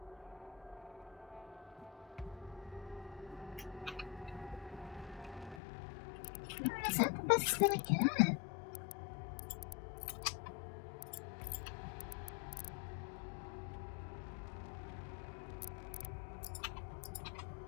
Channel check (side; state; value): right; drops out; at 5.6 s